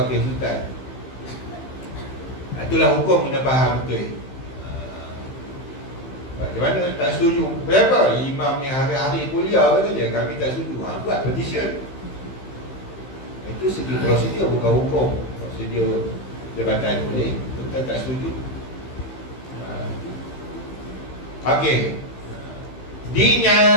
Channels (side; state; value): right; late; 15 ms